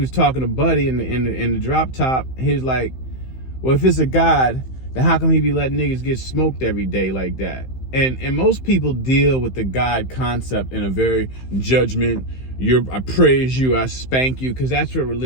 talking to Buddy in the drop top. He was like, well, if it's a God, then how come he be letting niggas get smoked every day like that? And most people deal with the God concept in a very judgment, I praise you, I spank you, because that's what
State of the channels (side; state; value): right; late; 15 ms